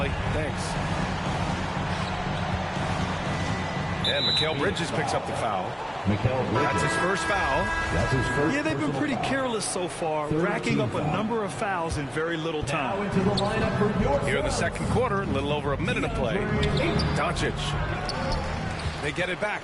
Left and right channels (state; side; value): identical; both; correlation 1.00